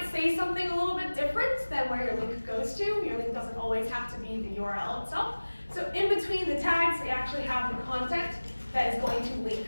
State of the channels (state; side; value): inverted; both; correlation -1.00